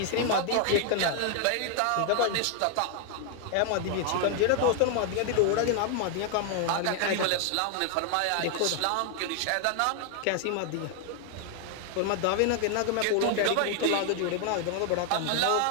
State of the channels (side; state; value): both; different; correlation 0.00